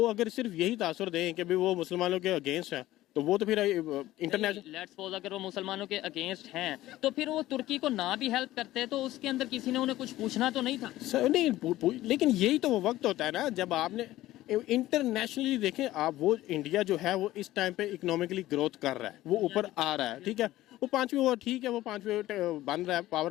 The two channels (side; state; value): right; quieter; 15.7 dB